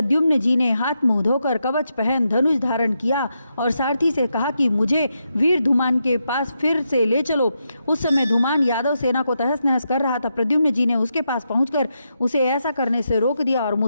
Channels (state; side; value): inverted; both; correlation -0.84